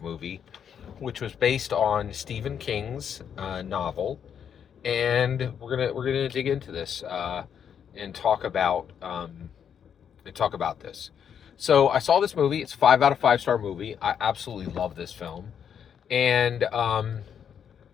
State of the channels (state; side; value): quieter; right; 8.1 dB